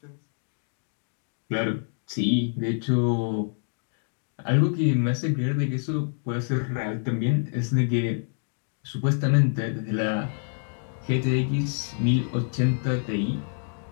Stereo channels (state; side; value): silent; right; digital silence